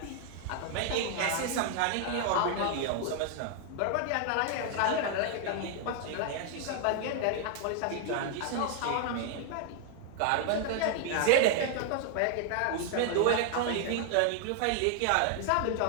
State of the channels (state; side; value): different; both; correlation 0.00